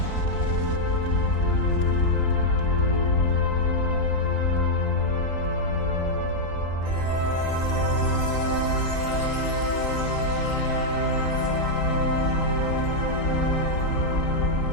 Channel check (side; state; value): right; late; 3.8 ms